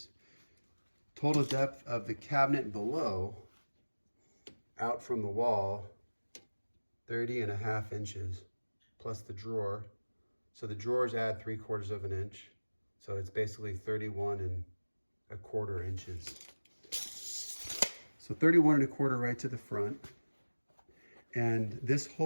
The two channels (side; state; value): both; inverted; correlation -1.00